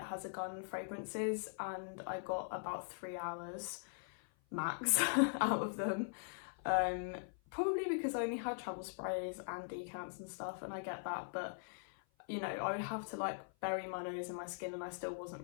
Has a Gun fragrances and I got about 3 hours max out of them. Probably because I only had travel sprays and decants and stuff, and I get that, but you know, I would have to like bury my nose in my skin and I still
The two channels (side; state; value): right; silent; 50 dB below the other